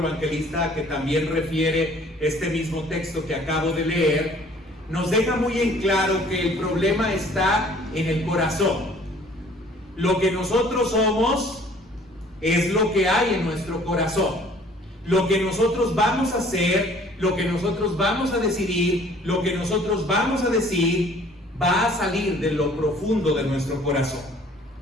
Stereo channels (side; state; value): both; normal; correlation 0.55